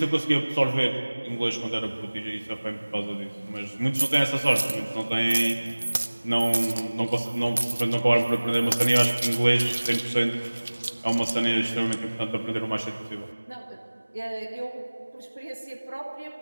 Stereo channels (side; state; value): both; inverted; correlation -1.00